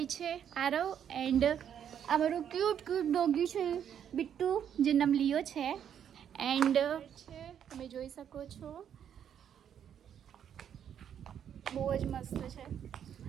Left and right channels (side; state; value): left; quieter; 9.0 dB